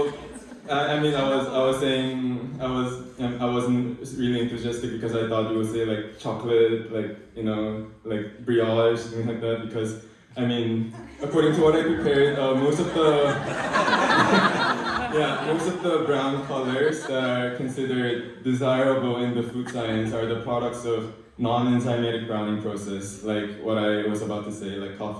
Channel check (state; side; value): identical; both; correlation 1.00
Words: I mean, I wasn't really enthusiastic because I thought you would say like chocolate, like, you know, like brioche, something like that, because, I mean, according to what I prepared, most of the, Yeah, most of the brown colors that are considered desirable in the food science are the products of non-enzymatic browning process, like what I was about to say, like